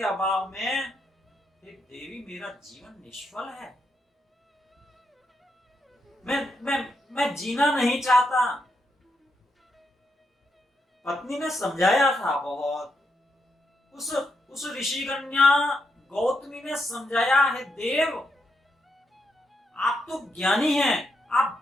अभाव में हे देवी मेरा जीवन निष्फल है। मैं जीना नहीं चाहता। पत्नी ने समझाया था बहुत। उस ऋषि कन्या गौतमी ने समझाया, है देव आप तो ज्ञानी हैं,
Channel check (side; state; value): both; normal; correlation 0.81